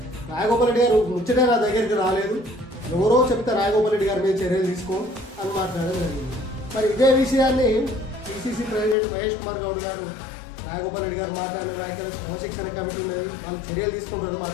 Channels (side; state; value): right; drops out; at 9.0 s